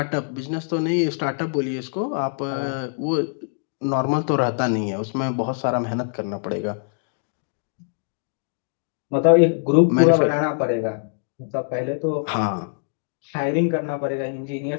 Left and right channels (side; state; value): right; silent; digital silence